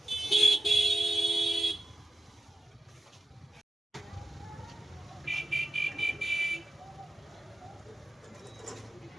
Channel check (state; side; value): normal; both; correlation 0.93